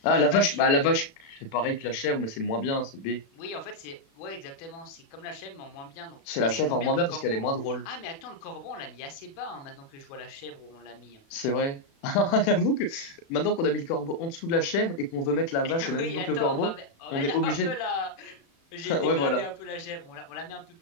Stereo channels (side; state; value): right; late; 36 ms